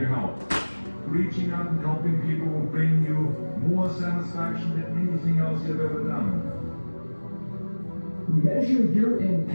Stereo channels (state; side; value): inverted; both; correlation -1.00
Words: help. Reaching out and helping people will bring you more satisfaction than anything else you've ever done. Measure your